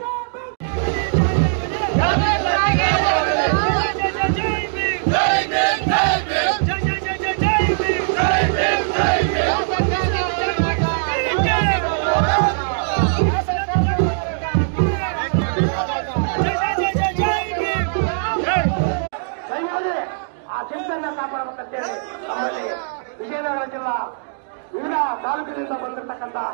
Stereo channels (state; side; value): silent; left; digital silence